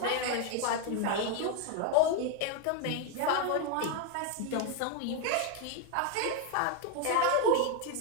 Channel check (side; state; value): both; different; correlation 0.01